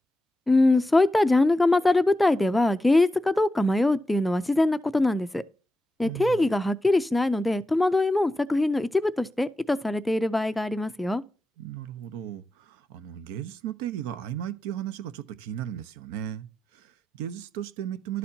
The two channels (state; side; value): normal; both; correlation 0.91